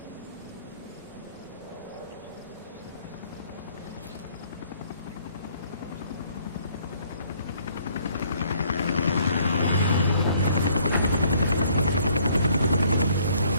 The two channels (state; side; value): inverted; both; correlation -0.62